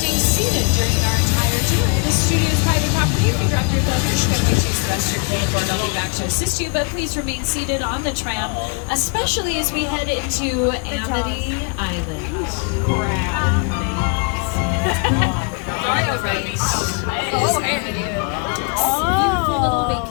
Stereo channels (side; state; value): right; quieter; 37.8 dB